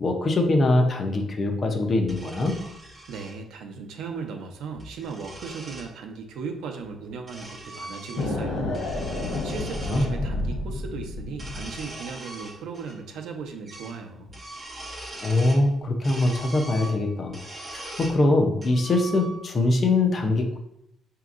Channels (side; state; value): both; normal; correlation 0.79